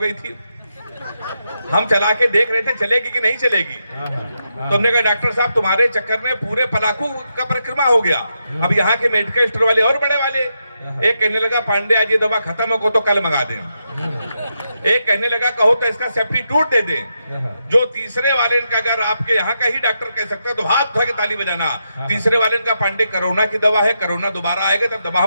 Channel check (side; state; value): both; inverted; correlation -0.84